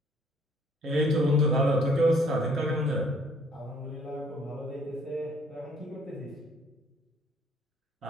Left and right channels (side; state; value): both; normal; correlation 0.61